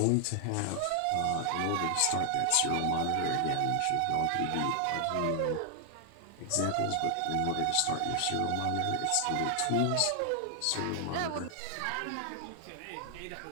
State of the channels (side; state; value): both; different; correlation 0.00